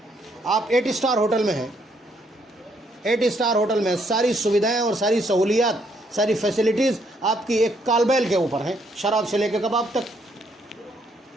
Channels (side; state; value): both; normal; correlation 0.71